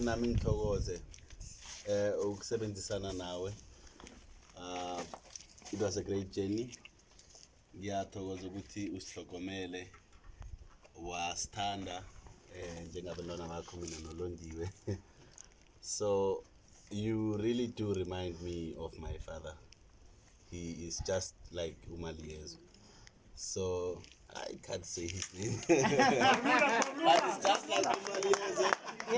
ngithokoze ukusebenzisana nawe. It was a great journey. Ngiyathokoza ukuthi usihlokomele wasithanda njengabantwana bakho mina nolondiwe. So you really do remind me of my father. He is just like Umaliyezu. So I can't say his name. But it's just like Umaliyezu.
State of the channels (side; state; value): both; identical; correlation 1.00